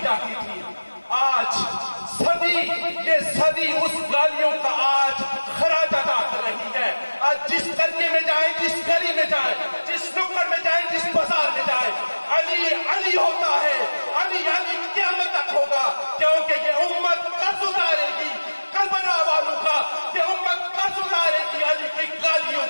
جاتی تھی۔ آج صدی، یہ صدی اس گالیوں کا آج خراج ادا کر رہی ہے۔ آج جس قریے میں جائیں، جس گلی میں جائیں، جس نکڑ میں جائیں، جس بازار میں جائیں، علی علی ہوتا ہے، علی علی قیامت تک ہوگا، کیونکہ یہ امت قرض اتارے گی کربلا والوں کا، یہ امت قرض اتارے گی علی کی گالیوں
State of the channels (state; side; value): inverted; both; correlation -1.00